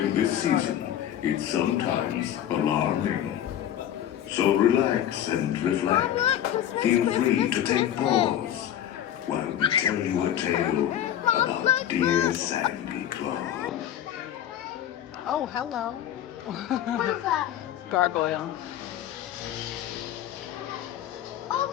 this season, it's sometimes alarming. So relax and reflect. Feel free to take pause while we tell you a tale about dear Sandy Claus. Oh, hello. Gargoyle. Oh,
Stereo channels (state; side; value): quieter; right; 11.0 dB